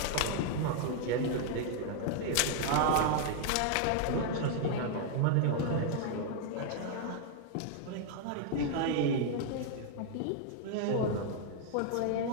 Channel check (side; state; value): both; different; correlation 0.00